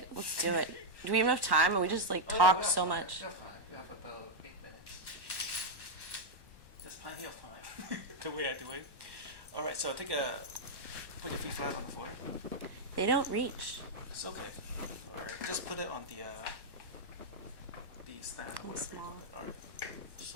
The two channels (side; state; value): left; late; 1.2 ms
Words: Let's do it. Do we have enough time? Or we just like talk so much? We have time. We have about 8 minutes. There's plenty of time. The way I do it. All right. So put your feet flat on the floor. They don't reach. It's okay. Or just put it on the stand. Or whatever small. you call it. All right.